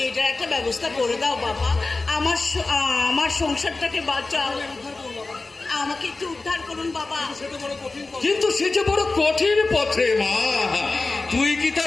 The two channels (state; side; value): quieter; right; 3.5 dB